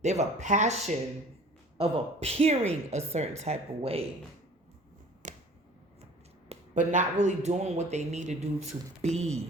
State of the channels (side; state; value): both; normal; correlation 0.47